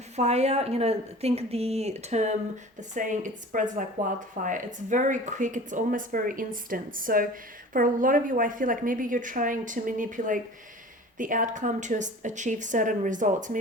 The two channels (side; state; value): both; normal; correlation 0.41